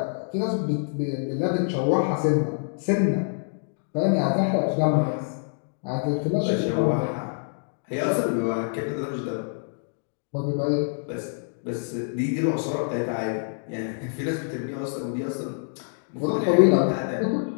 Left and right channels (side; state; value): right; silent; digital silence